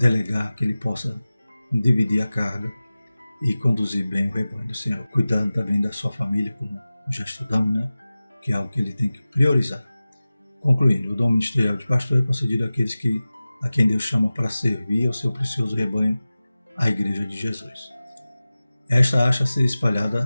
que ele possa dividir a carga e conduzir bem o rebanho do Senhor, cuidando também da sua família, como já estudamos, né? Que é algo que ele tem que priorizar. Concluindo, o dom ministerial de pastor é concedido àqueles a quem Deus chama para servir ao seu precioso rebanho, a Igreja de Jesus. Esta acha ser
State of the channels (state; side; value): inverted; both; correlation -0.97